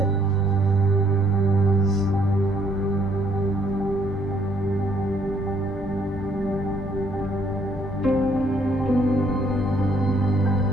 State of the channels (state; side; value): normal; both; correlation 0.66